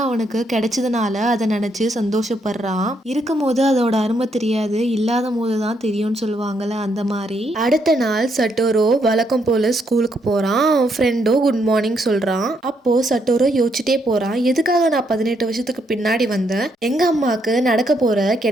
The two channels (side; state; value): both; normal; correlation 0.75